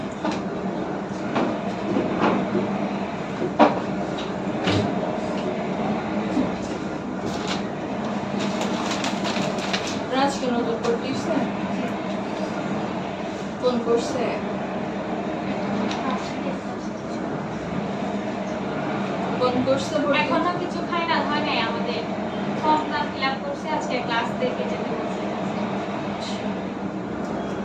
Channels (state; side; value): identical; both; correlation 1.00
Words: রাজ কি নতুন করতেছে কোন করছে কোন করছে ভর্তি? এখনো কিছু ফাইনাল হয় নাই আমাদের ফর্মটা ফিল আপ করছে আজকে ক্লাস দেখে যেতে বলছে